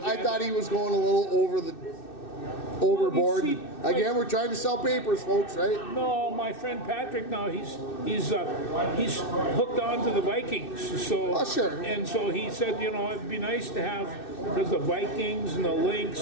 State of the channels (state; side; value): late; right; 2.6 ms